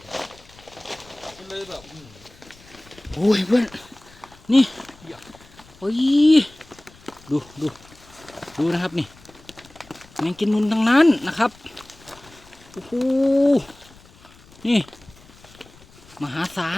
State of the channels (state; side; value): noise; left; rumble, 25 dB below the sound